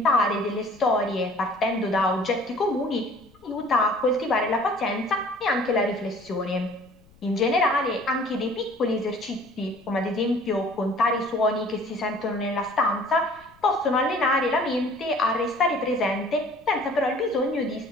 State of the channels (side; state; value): left; noise; rumble, 29 dB below the sound